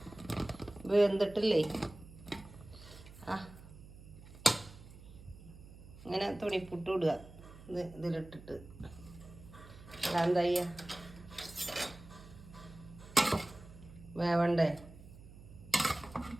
വെന്തിട്ടില്ലേ? ഇങ്ങനെ തുണിപ്പുട്ട് ഇടുക ഇതിലിട്ടിട്ട്. അതെന്താ ചെയ്യുക? വേവണ്ടേ?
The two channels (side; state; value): right; noise; hum, 18 dB below the sound